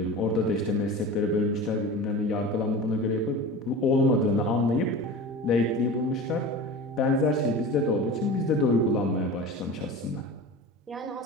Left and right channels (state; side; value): normal; both; correlation 0.33